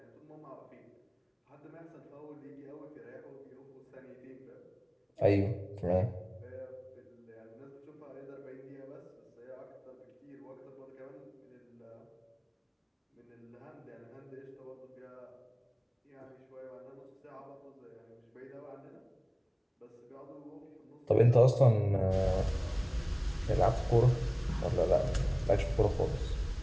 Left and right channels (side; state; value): both; identical; correlation 1.00